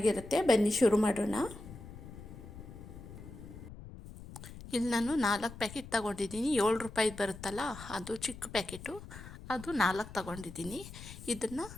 ಬನ್ನಿ ಶುರು ಮಾಡೋಣ. ಇಲ್ಲಿ ನಾನು 4 ಪ್ಯಾಕೆಟ್ ತಗೊಂಡಿದ್ದೀನಿ. 7 ರೂಪಾಯಿ ಬರುತ್ತಲ್ಲ, ಅದು ಚಿಕ್ಕ ಪ್ಯಾಕೆಟು, ಅದು 4 ತಗೊಂಡಿದ್ದೀನಿ. ಇದನ್ನು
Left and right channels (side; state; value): left; noise; rumble, 14 dB below the sound